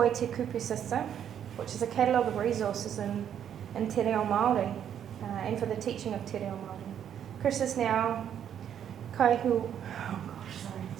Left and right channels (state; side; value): quieter; left; 9.3 dB